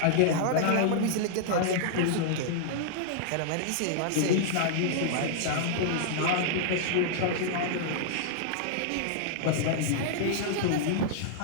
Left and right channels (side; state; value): both; different; correlation -0.01